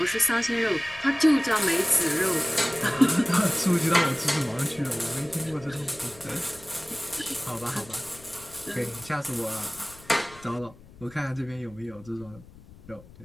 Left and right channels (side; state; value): left; noise; rumble, 21 dB below the sound